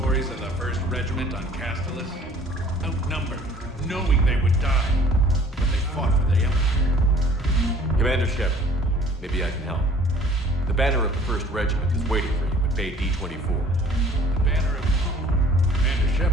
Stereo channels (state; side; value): normal; both; correlation 0.52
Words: of the 1st Regiment on Castellus? Outnumbered, knowing they would die, but they fought for the Empire. Commander Shepard, maybe I can help. The banner of the 1st Regiment is waiting for you at Bay D-24. The banner of... Commander